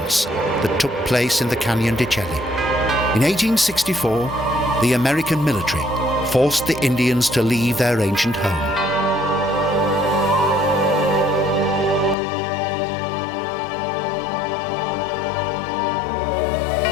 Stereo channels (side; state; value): right; drops out; at 12.2 s